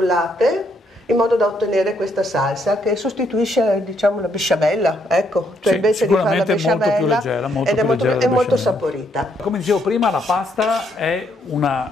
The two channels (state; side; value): normal; both; correlation 0.73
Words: in modo da ottenere questa salsa che sostituisce, diciamo, la besciamella, ecco, cioè sì, invece di fare la besciamella molto più leggera, è molto saporita. Come dicevo prima, la pasta è